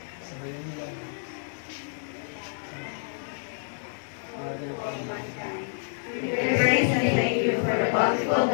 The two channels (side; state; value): right; silent; digital silence